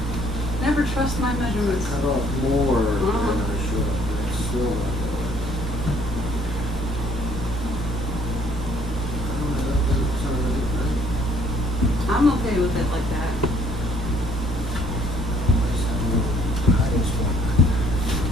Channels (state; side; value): normal; both; correlation 0.61